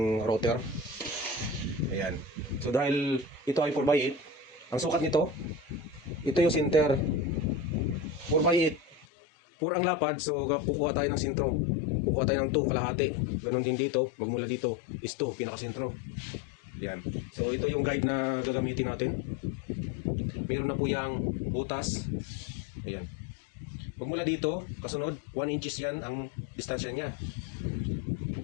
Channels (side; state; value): right; drops out; at 9.1 s